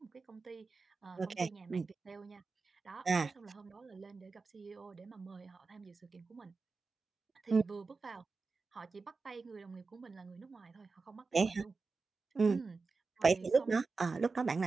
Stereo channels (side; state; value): left; quieter; 4.2 dB